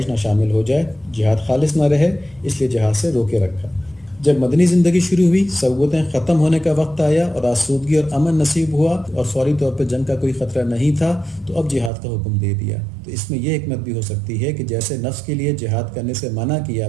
نہ شامل ہو جائے، جہاد خالص نہ رہے، اس لیے جہاد سے روکے رکھا۔ جب مدنی زندگی شروع ہوئی، صعوبتیں ختم ہونے کا وقت آیا اور آسودگی اور امن نصیب ہوا اور فوری طور پہ جنگ کا کوئی خطرہ نہیں تھا، تو اب جہاد کا حکم دے دیا۔ تو اس میں یہ حکمت بھی ہو سکتی ہے کہ جیسے نفس کے لیے جہاد کرنے سے منع کیا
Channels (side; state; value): left; drops out; at 11.9 s